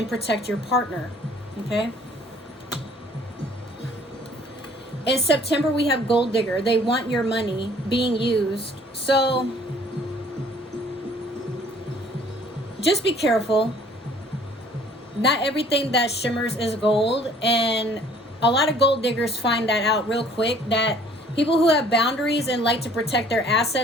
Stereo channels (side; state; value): both; normal; correlation 0.56